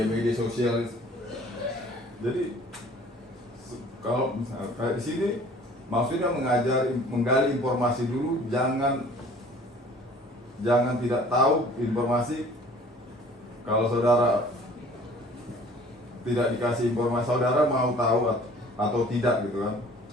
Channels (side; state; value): both; normal; correlation 0.50